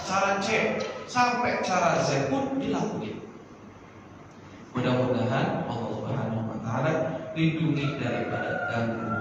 cara C sampai cara Z pun dilakuin. Mudah-mudahan Allah Subhanahu wa Ta'ala lindungi daripada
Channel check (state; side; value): identical; both; correlation 1.00